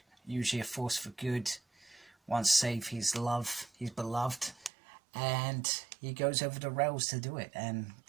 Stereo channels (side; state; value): left; drops out; at 4.7 s